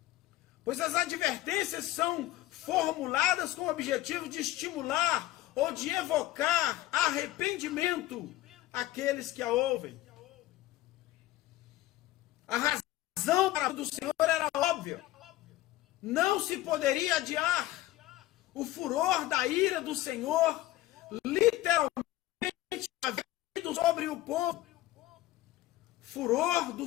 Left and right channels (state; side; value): quieter; right; 16.0 dB